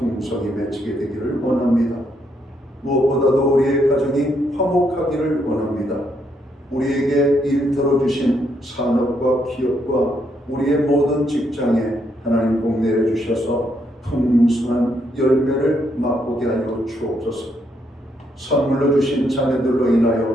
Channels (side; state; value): both; normal; correlation 0.75